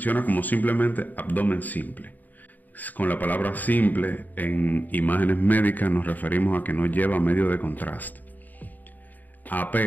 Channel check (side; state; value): right; late; 0.085 ms